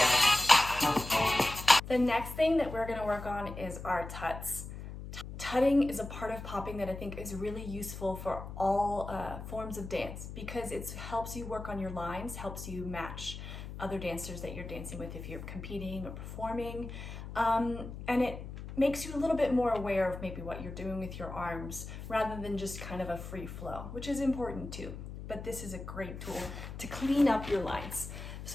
The next thing that we're gonna work on is our tuts. Tutting is a part of popping that I think is really useful for all forms of dance because it helps you work on your lines, helps you match other dancers that you're dancing with if you're competing or performing, and it makes you a little bit more aware of maybe what you're doing with your arms rather than just kind of a free flow, which is important too. But this is a great tool to clean up your lines.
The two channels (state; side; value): noise; left; hum, 10 dB below the sound